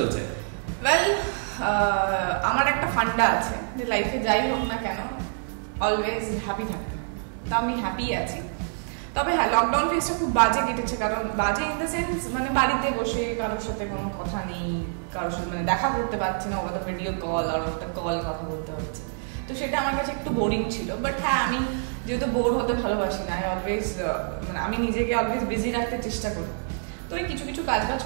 ওয়েল, আমার একটা ফান্ডা আছে যে লাইফে যাই হোক না কেন অলওয়েজ হ্যাপি থাকতে, তো আমি হ্যাপি আছি। তবে হ্যাঁ, লকডাউন ফেজটা খুব বাজে কেটেছে। কারণ বাজে ইন দ্য সেন্স মানে বাড়িতে বসে কারোর সাথে কোনো কথা নেই, কারোর সাথে মানে দেখা করতে পারছি না, ওটা ভিডিও কল আর একটা কল কথা বলতে হচ্ছে, তো সেটা আমার কাছে একটু বোরিং ছিল। বাট হ্যাঁ, আমি যেহেতু বোর হতে ভালোবাসি না, অলওয়েজ মানে আমি নিজেকে অলওয়েজ বিজি রাখতে চেষ্টা করি। তো এই কিছু কিছু কাজ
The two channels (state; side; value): silent; left; digital silence